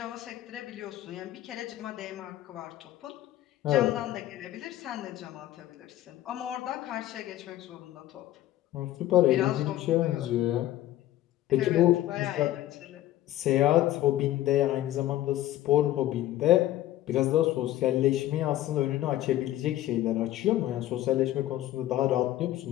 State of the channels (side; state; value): right; quieter; 14.3 dB